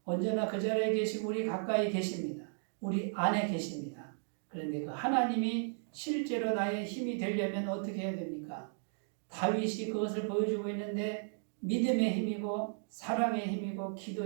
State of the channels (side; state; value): left; silent; digital silence